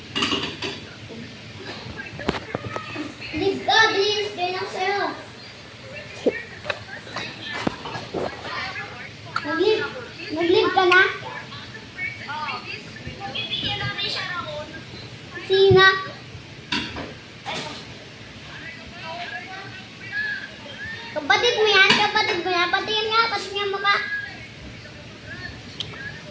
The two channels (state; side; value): identical; both; correlation 1.00